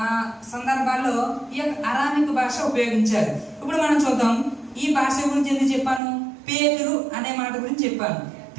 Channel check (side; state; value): left; drops out; at 6.0 s